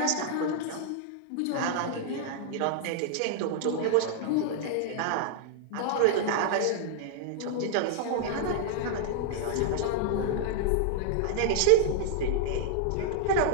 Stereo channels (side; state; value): both; different; correlation 0.00